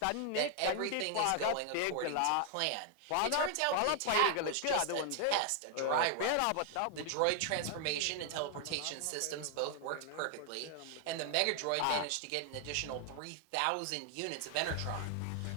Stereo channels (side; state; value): both; different; correlation 0.00